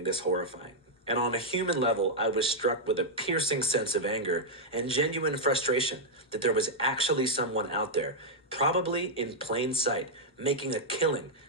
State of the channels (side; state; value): both; normal; correlation -0.04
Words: this horrifying. And on a human level, I was struck with a piercing sense of anger and genuine frustration that there was actually someone out there, probably in plain sight, making a killing,